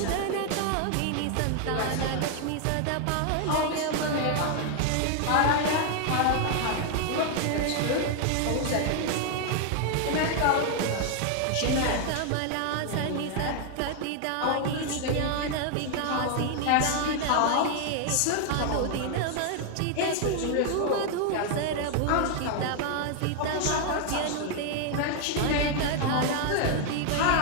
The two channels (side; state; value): both; different; correlation 0.00